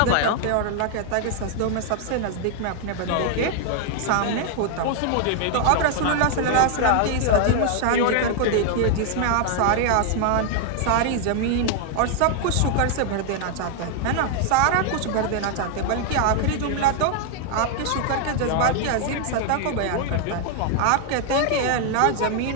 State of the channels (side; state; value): both; different; correlation 0.00